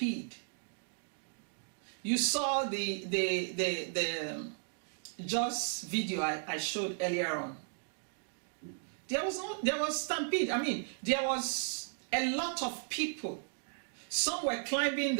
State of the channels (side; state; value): left; silent; digital silence